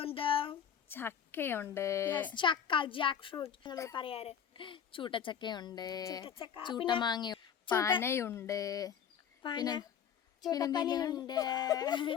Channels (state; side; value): quieter; right; 8.3 dB